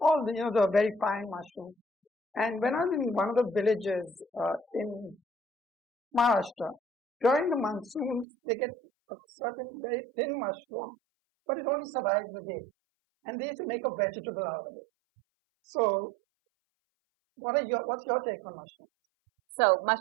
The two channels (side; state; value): left; drops out; at 8.2 s